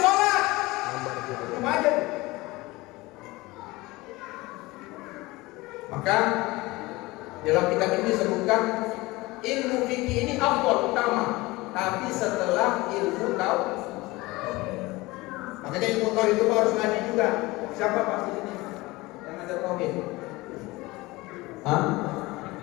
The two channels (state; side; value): quieter; right; 21.2 dB